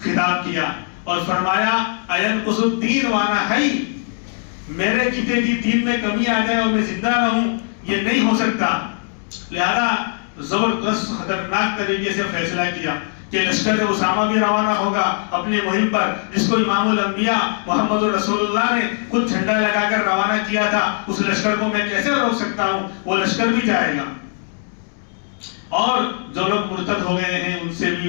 خطاب کیا اور فرمایا اَيَنْقُصُ الدِّينُ وَأَنَا حَيٌّ، میرے جیتے جی دین میں کمی آ جائے اور میں زندہ رہوں، یہ نہیں ہو سکتا۔ لہذا زبردست خطرناک طریقے سے فیصلہ کیا کہ لشکر اسامہ بھی روانہ ہوگا اپنی مہم پر، جس کو امام الانبیاء محمد رسول اللہ نے خود جھنڈا لگا کر روانہ کیا تھا، اس لشکر کو میں کیسے روک سکتا ہوں، وہ لشکر بھی جائے گا۔ اور جو لوگ مرتد ہو گئے ہیں ان سے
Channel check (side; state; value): right; silent; 66 dB below the other